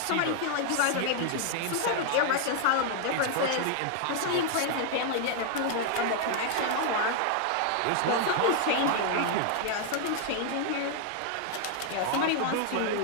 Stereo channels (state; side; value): different; both; correlation 0.00